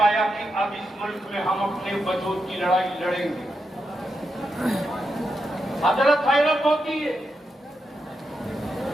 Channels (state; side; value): normal; both; correlation 0.85